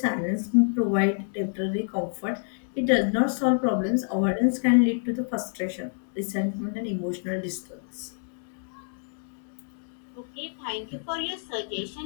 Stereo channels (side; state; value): right; silent; digital silence